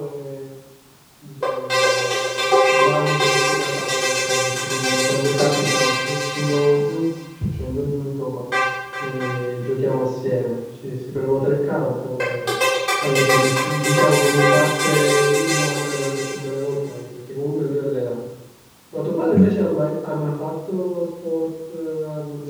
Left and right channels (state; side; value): identical; both; correlation 1.00